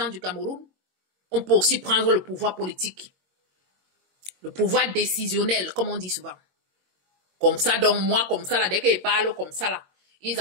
du Cameroun. On peut aussi prendre le pouvoir politique. Le pouvoir décisionnel, comme on dit souvent. Comme ça, donc moi, comme ça, là, dès qu'ils parlent comme ça, là, ils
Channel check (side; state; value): left; late; 22 ms